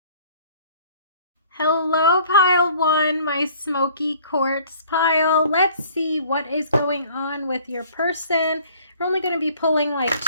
Hello, pile 1, my smoky quartz pile. Let's see what is going on with your person. We're only going to be pulling like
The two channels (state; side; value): inverted; both; correlation -0.54